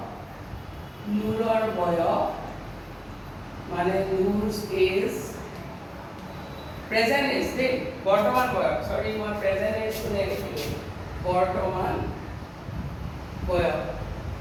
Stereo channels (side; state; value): both; identical; correlation 1.00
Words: নূৰৰ বয়স মানে নূৰ's age প্ৰেজেণ্ট এজ দেই বৰ্তমান বয়স সৰি মই প্ৰেজেণ্ট এজ কোনে লিখিলোঁ বৰ্তমান বয়স